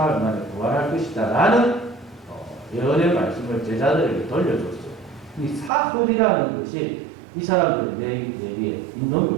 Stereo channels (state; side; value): drops out; left; at 5.7 s